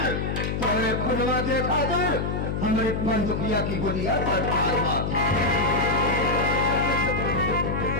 तोरे खुदवा के खातिर हमारी बंदूकिया की गोलियां पर हुआ।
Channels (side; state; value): left; noise; hum, 1 dB below the sound